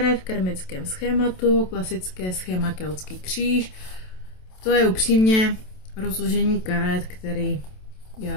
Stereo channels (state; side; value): late; right; 27 ms